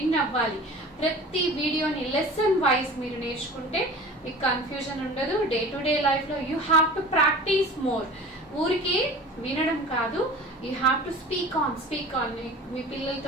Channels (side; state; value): both; normal; correlation 0.39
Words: అవ్వాలి. ప్రతి వీడియోని లెసన్ వైజ్ మీరు నేర్చుకుంటే మీకు కన్ఫ్యూజన్ ఉండదు. డే టు డే లైఫ్లో you have to practise more. ఊరికే వినడం కాదు, you have to speak on. మీ